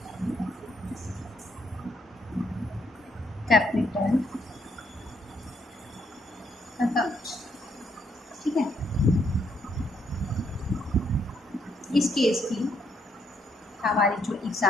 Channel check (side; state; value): both; normal; correlation 0.73